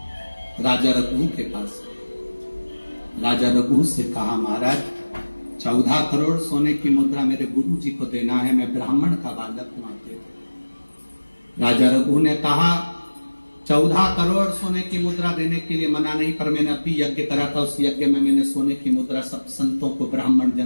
राजा रघु के पास। राजा रघु से कहा महाराज 14 करोड़ सोने की मुद्रा मेरे गुरु जी को देना है, मैं ब्राह्मण का बालक हूं, दे दो। राजा रघु ने कहा 14 करोड़ सोने की मुद्रा देने के लिए मना नहीं, पर मैंने अभी यज्ञ करा था, उस यज्ञ में मैंने सोने की मुद्रा सब संतों को, ब्राह्मण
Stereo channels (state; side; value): inverted; both; correlation -1.00